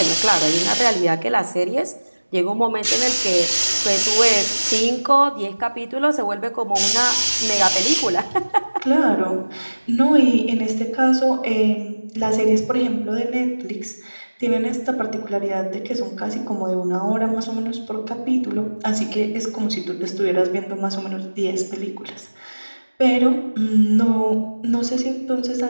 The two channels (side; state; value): both; inverted; correlation -1.00